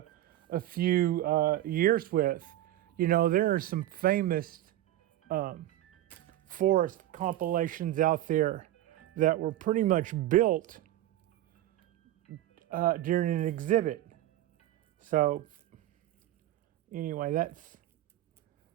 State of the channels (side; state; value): left; quieter; 13.9 dB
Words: a few years with. There are some famous forest compilations out there that were pretty much built during an exhibit. So anyway,